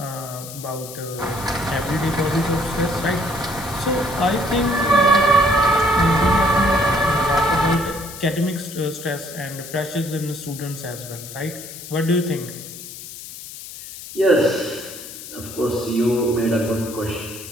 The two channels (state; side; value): noise; left; hiss, 13 dB below the sound